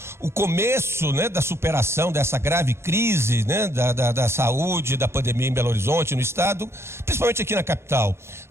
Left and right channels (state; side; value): late; left; 0.12 ms